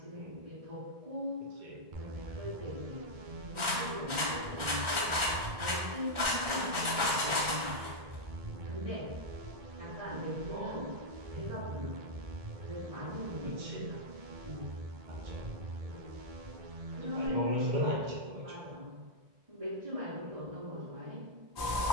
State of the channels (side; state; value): left; late; 1.4 ms